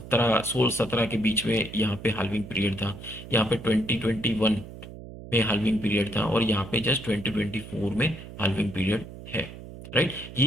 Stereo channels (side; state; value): right; noise; hum, 14 dB below the sound